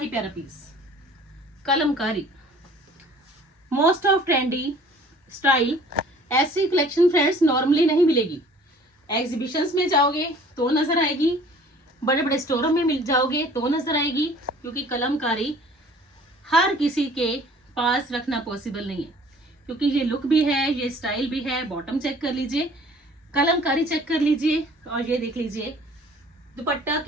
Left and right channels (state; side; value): normal; both; correlation 0.51